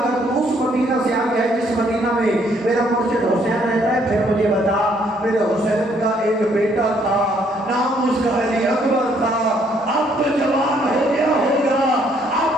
تو اس مدینہ سے آئی ہے جس مدینہ میں میرا مرشد حسین رہتا ہے، پھر مجھے بتا میرے حسین کا ایک بیٹا تھا، نام اس کا علی اکبر تھا، اب تو جوان ہو گیا ہوگا،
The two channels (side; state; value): both; normal; correlation 0.67